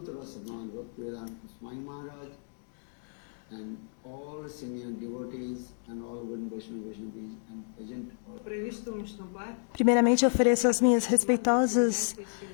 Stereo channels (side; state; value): right; silent; digital silence